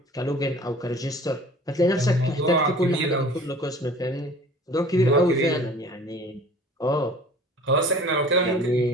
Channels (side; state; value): both; normal; correlation 0.46